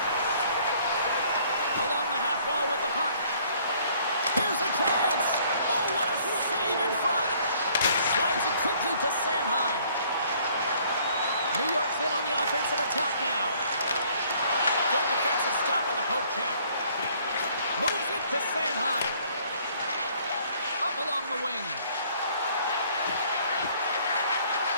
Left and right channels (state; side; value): inverted; both; correlation -0.60